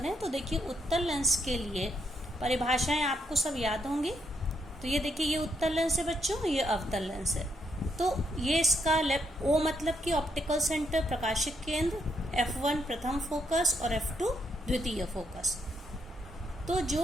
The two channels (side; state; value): both; normal; correlation 0.77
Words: तो देखिए उत्तल लेंस के लिए परिभाषाएं आपको सब याद होंगी। तो ये देखिए ये उत्तल लेंस है बच्चों, ये अवतल लेंस है। तो ये इसका ओ मतलब कि ऑप्टिकल सेंटर प्रकाशिक केंद्र, F1 प्रथम फोकस और F2 द्वितीय फोकस। तो